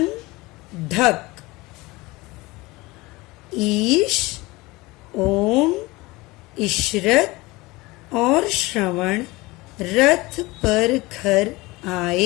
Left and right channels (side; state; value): right; quieter; 21.9 dB